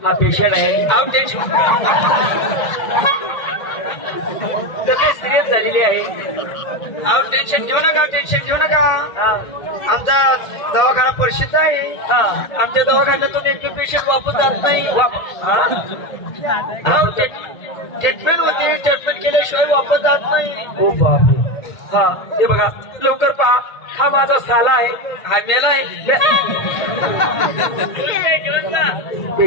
हा पेशंट आहे आउट टेन्शन सिरियस झालेली आहे आहो टेन्शन घेऊ नका टेन्शन घेऊ नका आमचा दवाखाना प्रसिद्ध आहे आमच्या दवाखान्यातून एक पेशंट वापस जात नाही ट्रीटमेंट होती ट्रीटमेंट केल्याशिवाय वापस जात नाही हो बापरे हा हे बघा लवकर पहा हा माझा साला आहे हा मेला आहे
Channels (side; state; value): right; late; 1.1 ms